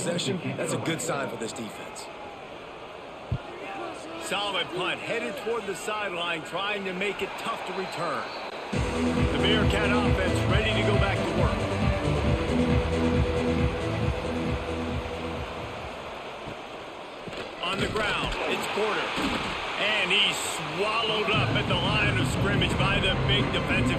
that's a good sign for this defense. Solid punt, headed toward the sideline, trying to make it tough to return. The Bearcat offense ready to go back to work. On the ground, it's Porter. And he's swallowed up at the line of scrimmage by the big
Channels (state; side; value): identical; both; correlation 1.00